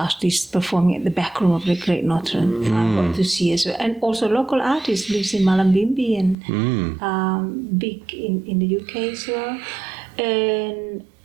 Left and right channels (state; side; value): drops out; left; at 6.4 s